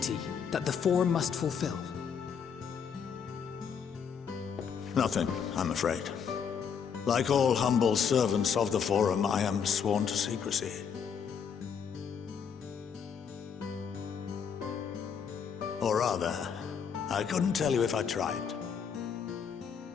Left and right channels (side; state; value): right; quieter; 7.0 dB